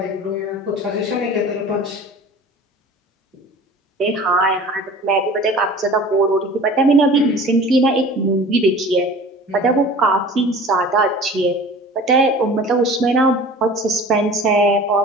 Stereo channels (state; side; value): normal; both; correlation 0.42